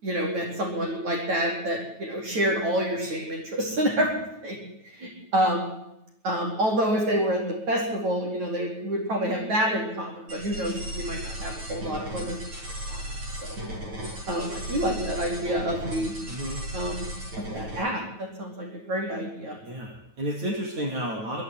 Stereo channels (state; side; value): late; left; 9.2 ms